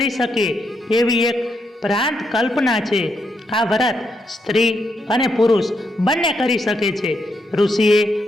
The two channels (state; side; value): normal; both; correlation 0.80